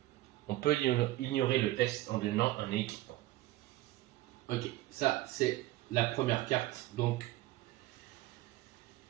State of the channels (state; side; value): quieter; left; 16.4 dB